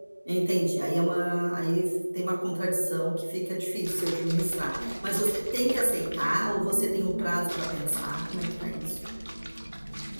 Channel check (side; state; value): both; inverted; correlation -1.00